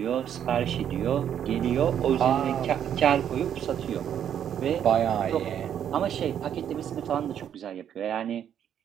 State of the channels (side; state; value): left; quieter; 9.4 dB